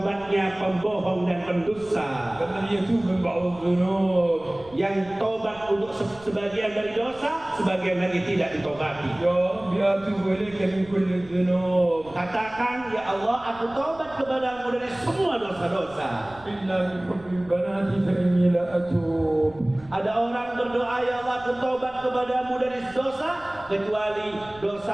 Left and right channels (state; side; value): noise; right; rumble, 23 dB below the sound